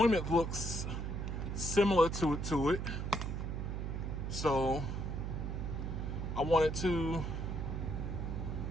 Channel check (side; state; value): right; noise; hum, 3 dB below the sound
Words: looks similar to it. So I wanted to